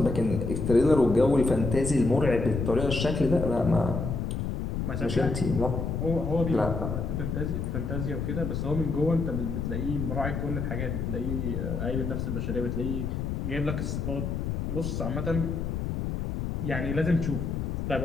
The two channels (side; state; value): left; noise; rumble, 2 dB below the sound